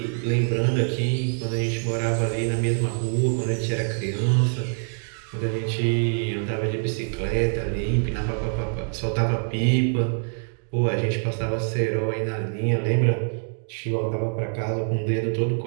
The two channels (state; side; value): silent; left; 60 dB below the other